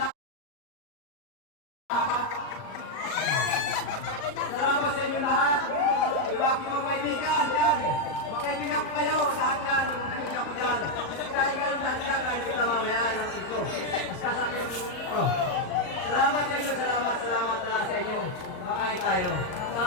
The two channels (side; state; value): right; late; 38 ms